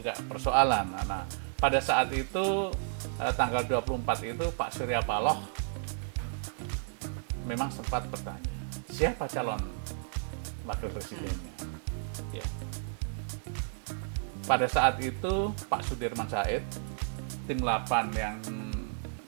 persoalan. Nah, pada saat itu tanggal 24 itu Pak Surya Paloh memang sempat bertanya, siapa calon wakil presidennya? Ya. Pada saat itu Pak Sudirman Said, tim 8 yang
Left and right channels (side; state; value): left; silent; digital silence